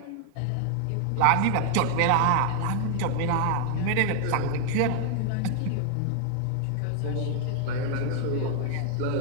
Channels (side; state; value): both; different; correlation 0.00